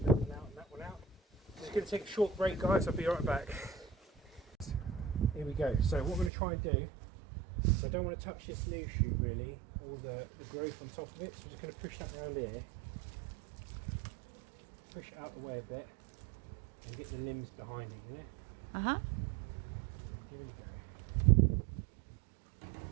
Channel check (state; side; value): drops out; left; at 6.3 s